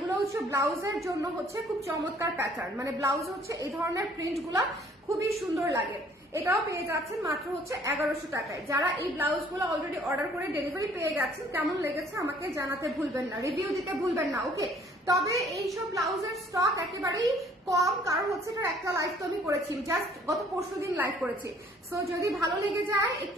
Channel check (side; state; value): both; normal; correlation 0.59